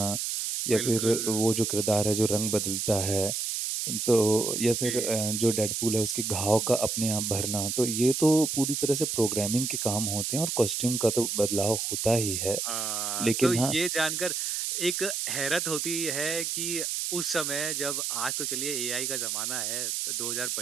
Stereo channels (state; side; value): noise; right; hiss, 1 dB below the sound